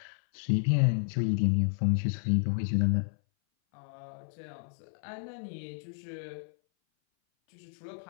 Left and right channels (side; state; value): right; silent; 57 dB below the other